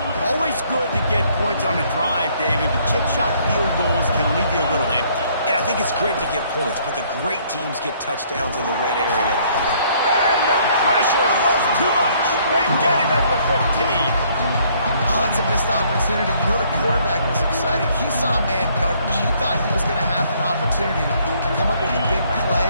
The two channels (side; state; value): both; inverted; correlation -0.64